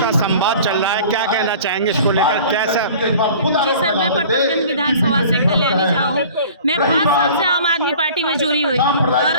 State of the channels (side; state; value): both; inverted; correlation -0.45